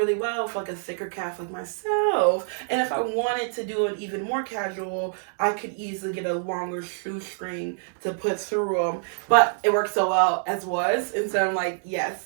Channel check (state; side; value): silent; left; 61 dB below the other